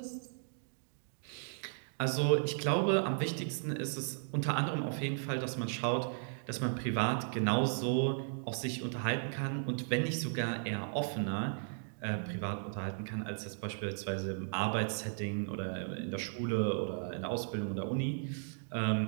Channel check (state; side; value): silent; left; digital silence